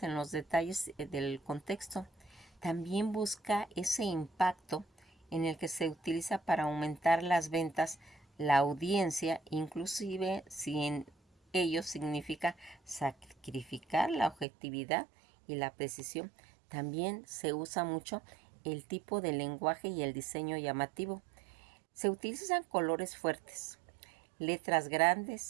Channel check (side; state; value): left; drops out; at 14.5 s